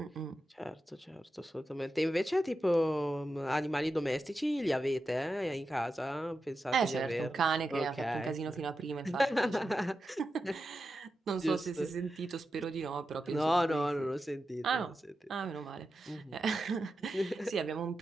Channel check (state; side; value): normal; both; correlation 0.90